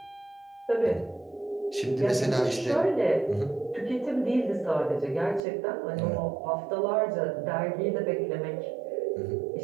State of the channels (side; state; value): left; drops out; at 5.4 s